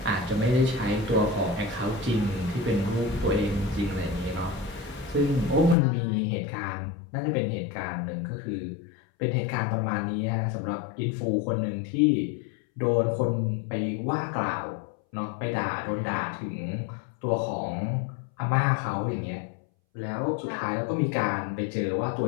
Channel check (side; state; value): right; drops out; at 5.8 s